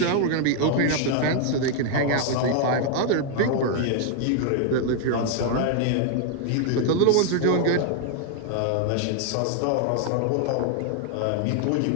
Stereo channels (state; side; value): different; both; correlation 0.00